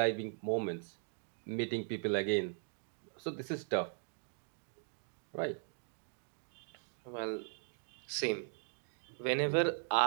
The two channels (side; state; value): left; silent; digital silence